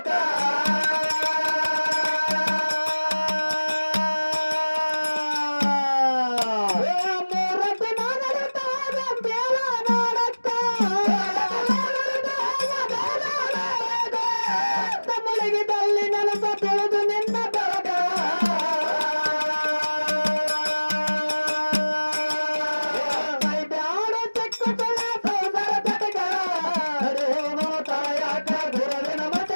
ಮೂರತಿ ನಾನಡತಾದ ಬೇಲ ನಾಡಕ್ಕ ಮುಳುಗಿದಲ್ಲಿ ನೆಲಸ ಬೆಳೆದು ನಿನ್ನ ಬೆಳಗ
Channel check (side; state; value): both; inverted; correlation -1.00